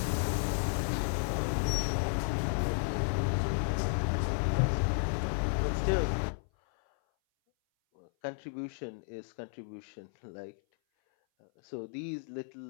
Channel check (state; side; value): silent; right; 56 dB below the other